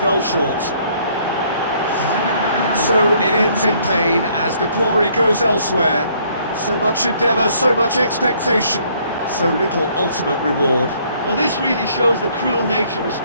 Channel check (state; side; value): inverted; both; correlation -0.64